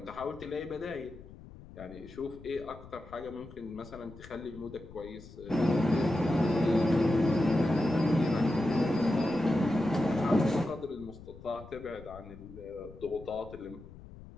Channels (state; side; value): noise; left; rumble, 17 dB below the sound